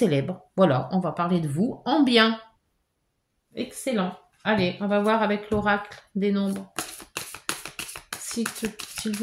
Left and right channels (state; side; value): identical; both; correlation 1.00